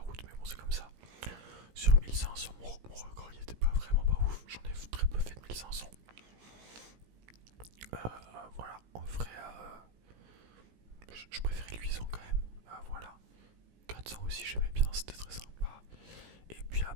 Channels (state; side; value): late; left; 17 ms